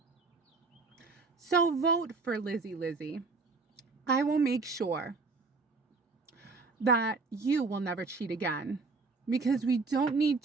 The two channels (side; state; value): left; quieter; 4.1 dB